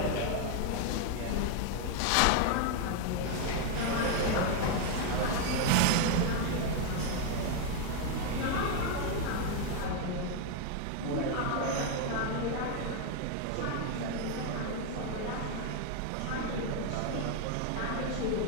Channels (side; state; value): both; different; correlation 0.00